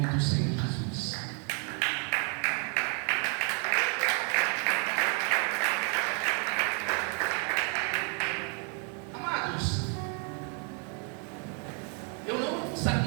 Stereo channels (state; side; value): quieter; left; 39.4 dB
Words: do Senhor Jesus. Amados, eu não